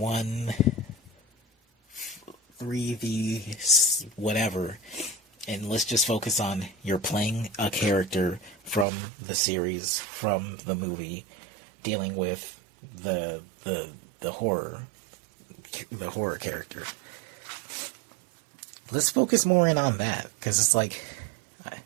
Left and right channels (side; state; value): left; drops out; at 8.8 s